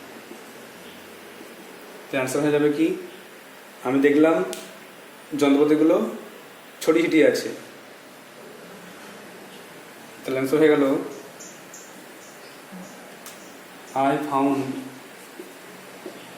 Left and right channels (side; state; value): both; identical; correlation 1.00